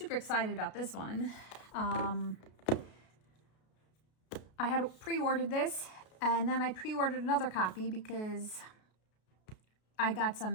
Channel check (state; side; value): late; right; 33 ms